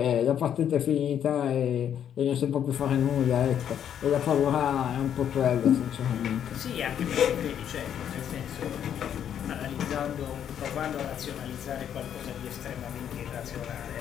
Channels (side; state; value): right; quieter; 9.4 dB